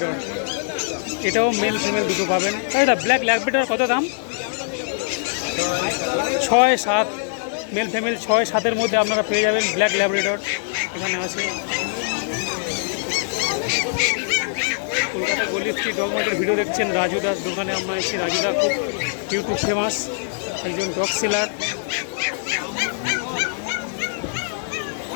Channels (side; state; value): right; silent; digital silence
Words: এটাও মেল ফিমেল দুটো পাবেন। দাদা ব্ল্যাক ল্যাব্রাডর কত দাম? 6-7 মেল ফিমেল 6-7-এর মধ্যে আপনারা পেয়ে যাবেন ব্ল্যাক ল্যাব্রাডর। এখানে আছে কলকাতা গলি স্ট্রিট ডগ মার্কেটের ভিডিও দেখছেন। রাজুদার দোকানে আমরা এসেছি। রাজুদা খুব ইউটিউব ফেমাস একজন ডগ সেলার।